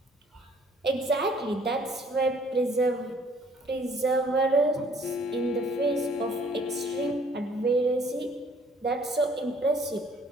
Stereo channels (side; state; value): both; normal; correlation 0.59